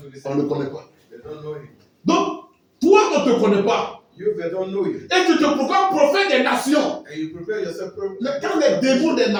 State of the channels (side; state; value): both; identical; correlation 1.00